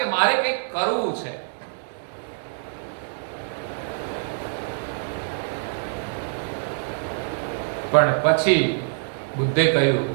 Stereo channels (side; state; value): left; silent; digital silence